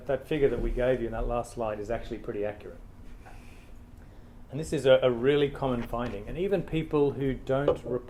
figure that we gave you in that last slide is actually pretty accurate. And this is a really common finding. And even people who don't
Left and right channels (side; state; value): both; identical; correlation 1.00